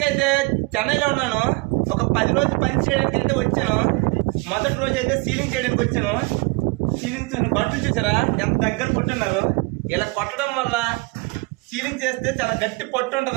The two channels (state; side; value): quieter; left; 25.7 dB